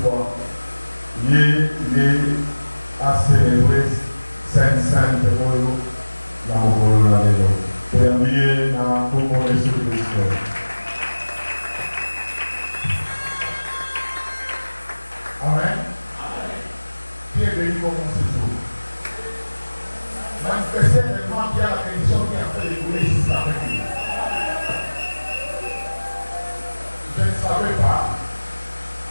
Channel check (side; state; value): both; inverted; correlation -1.00